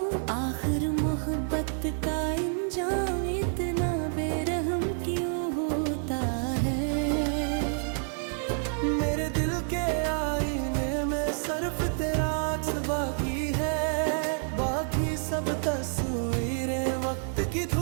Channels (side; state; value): left; silent; 59 dB below the other